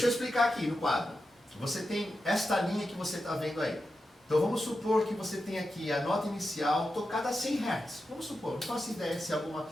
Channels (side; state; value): both; normal; correlation 0.90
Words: eu explicar aqui no quadro. Você tem esta linha que você está vendo aí. Então vamos supor que você tem aqui a nota inicial tocada a 100 Hz. Vamos supor, não faço ideia se alguma